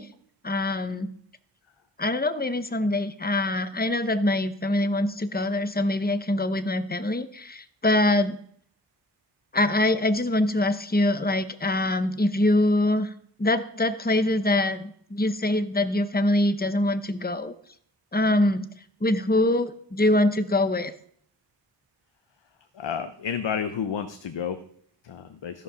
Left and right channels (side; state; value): both; normal; correlation 0.55